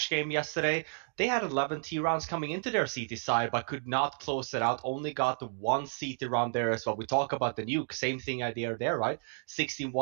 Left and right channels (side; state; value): left; silent; 57 dB below the other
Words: game yesterday. They had 11 T rounds coming into their CT side, but could not close it out. Only got the one CT round there as well. We talk about the Nuke, same thing idea there, right? 16-1